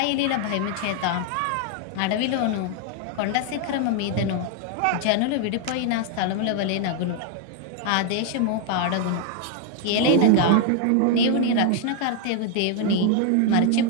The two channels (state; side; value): different; both; correlation 0.00